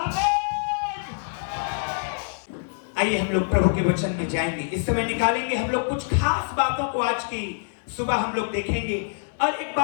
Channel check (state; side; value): silent; right; digital silence